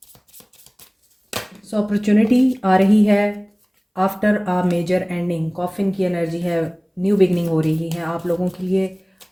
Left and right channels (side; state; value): both; identical; correlation 1.00